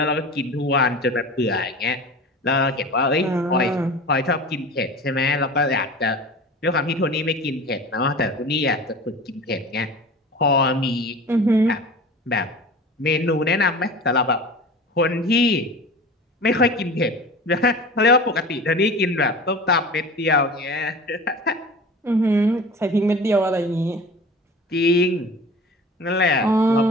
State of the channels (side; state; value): both; normal; correlation 0.37